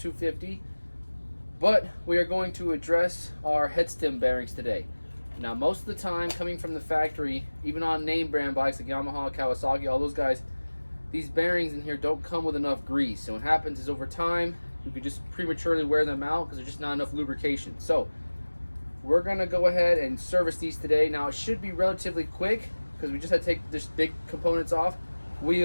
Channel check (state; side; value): inverted; both; correlation -1.00